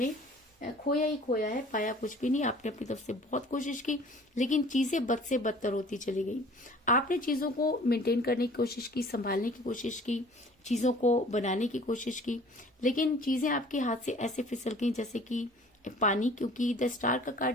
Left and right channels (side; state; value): both; normal; correlation 0.49